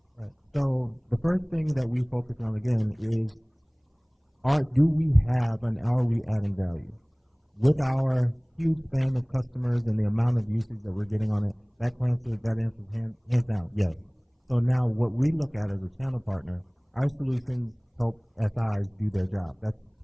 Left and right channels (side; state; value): both; identical; correlation 1.00